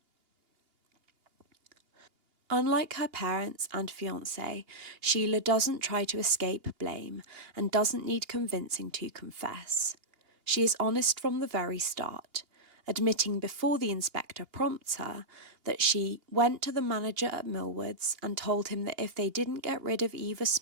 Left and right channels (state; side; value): late; left; 2.8 ms